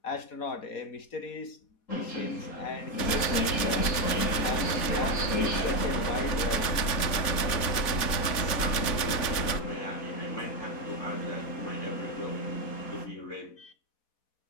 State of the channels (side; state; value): right; late; 4.1 ms